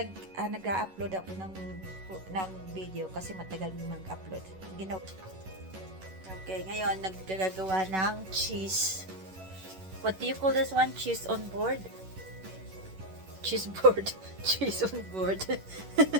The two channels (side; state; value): left; late; 11 ms